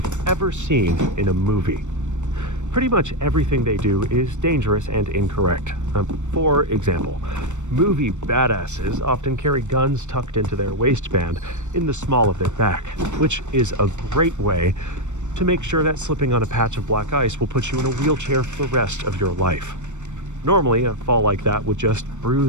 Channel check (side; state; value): left; late; 0.84 ms